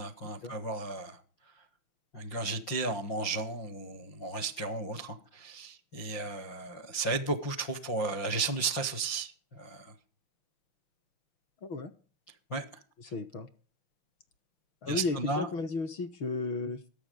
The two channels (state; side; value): late; right; 5.8 ms